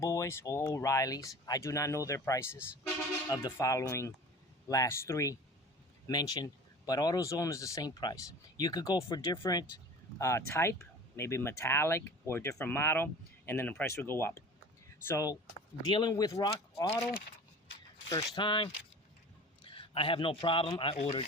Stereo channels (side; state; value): both; normal; correlation 0.40